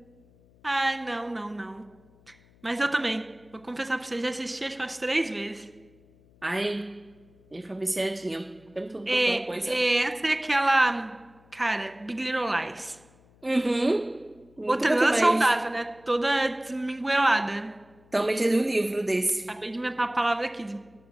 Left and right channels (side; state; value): left; noise; hum, 29 dB below the sound